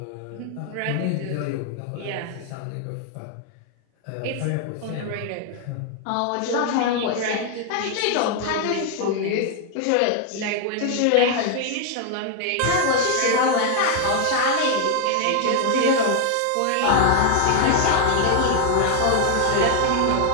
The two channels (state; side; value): different; both; correlation 0.00